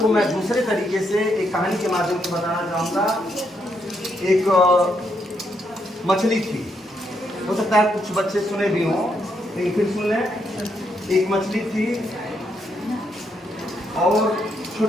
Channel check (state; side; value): normal; both; correlation 0.78